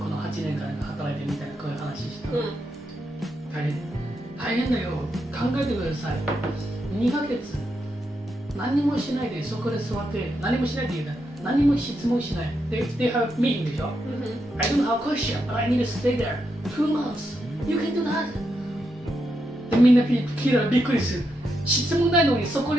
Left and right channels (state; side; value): normal; both; correlation 0.83